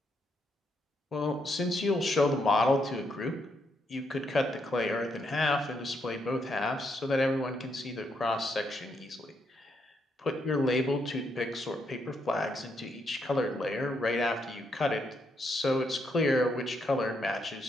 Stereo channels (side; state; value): both; normal; correlation 0.78